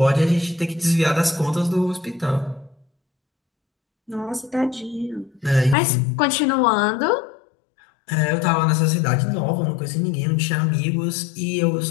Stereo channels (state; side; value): drops out; right; at 5.8 s